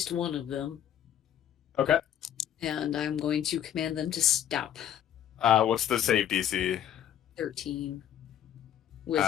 one of them, Okay. and I'm going to command them to stop. What's the save DC? 13.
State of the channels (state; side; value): quieter; right; 10.3 dB